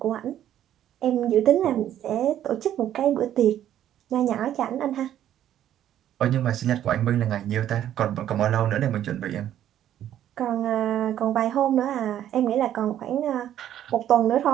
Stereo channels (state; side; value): quieter; left; 11.3 dB